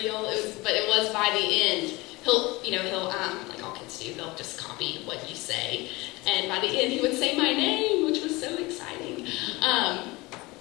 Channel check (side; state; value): right; quieter; 22.5 dB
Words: But it was by the end, he'll like all kids do, they'll just copy what you say, and by the end he would say my name, which was so exciting.